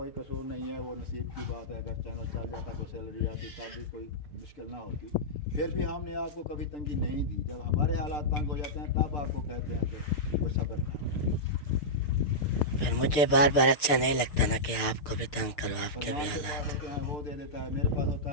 कसूर नहीं है, वो नसीब की बात है। अगर चैनल चल जाता तो सैलरी आती तब भी कोई मुश्किल ना होती। फिर भी हमने आपको कभी तंगी नहीं दी। जब हमारे हालात तंग हो जाते हैं तब आपको कहते हैं कि वो सब्र करें। फिर मुझे बार बार अच्छा नहीं लगता ना कि आपको भी तंग करो, आपके भी फरमान के पास हालात। होते हैं वो दे देता है, मेरे पास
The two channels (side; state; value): right; late; 6.7 ms